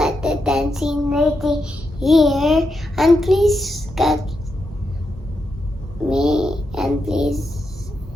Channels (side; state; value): both; normal; correlation 0.85